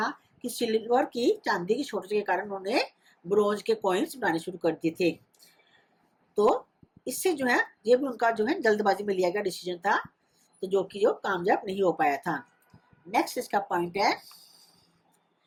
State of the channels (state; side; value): identical; both; correlation 1.00